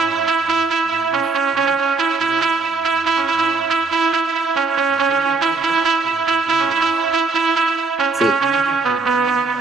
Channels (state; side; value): quieter; left; 3.9 dB